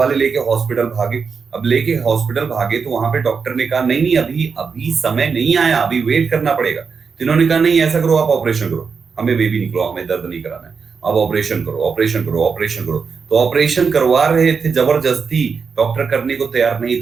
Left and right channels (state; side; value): quieter; left; 5.5 dB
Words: लेके हॉस्पिटल भागे। अब लेके हॉस्पिटल भागे तो वहां पे डॉक्टर ने कहा नहीं नहीं, अभी अभी समय नहीं आया, अभी वेट करना पड़ेगा। तो इन्होंने कहा नहीं ऐसा करो, आप ऑपरेशन करो, हमें बेबी निकलो, हमें दर्द नहीं कराना है, अब ऑपरेशन करो, ऑपरेशन करो, ऑपरेशन करो। तो ऑपरेशन करवा रहे थे जबरदस्ती, डॉक्टर करने को तैयार नहीं